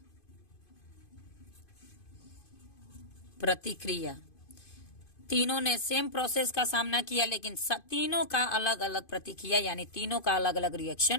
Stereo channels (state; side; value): late; right; 2.5 ms